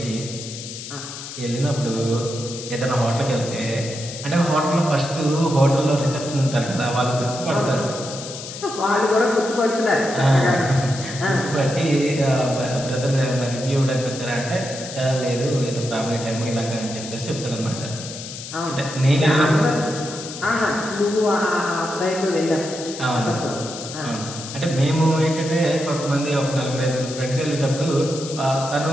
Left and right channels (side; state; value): left; noise; hiss, 10 dB below the sound